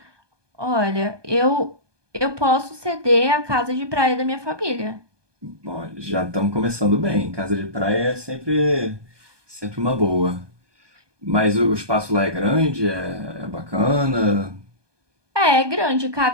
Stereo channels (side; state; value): left; late; 1.2 ms